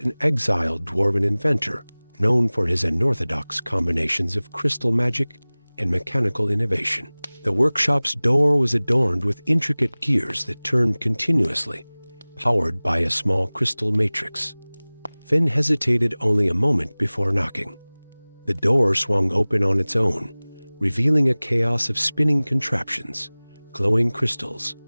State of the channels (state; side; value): inverted; both; correlation -1.00